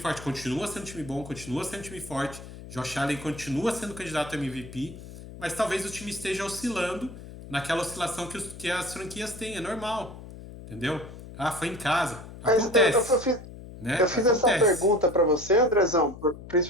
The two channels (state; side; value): noise; left; hum, 14 dB below the sound